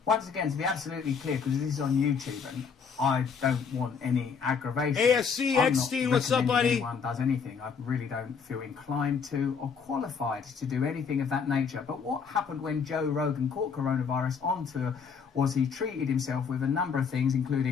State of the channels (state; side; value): quieter; right; 6.1 dB